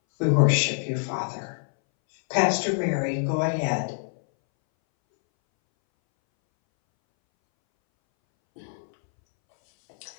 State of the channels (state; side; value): silent; right; 62 dB below the other